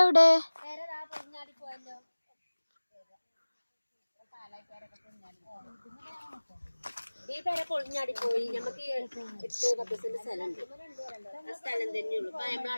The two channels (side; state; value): both; inverted; correlation -1.00